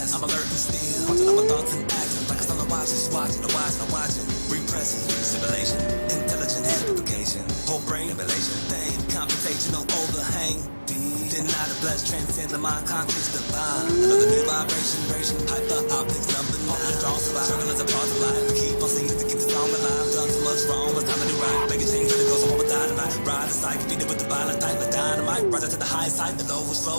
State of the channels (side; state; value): both; inverted; correlation -1.00